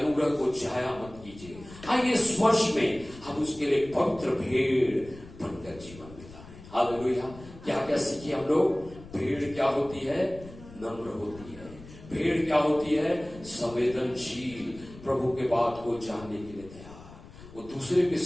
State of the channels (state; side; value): noise; left; rumble, 18 dB below the sound